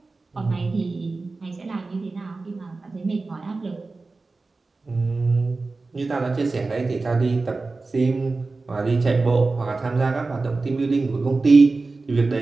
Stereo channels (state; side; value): quieter; left; 3.7 dB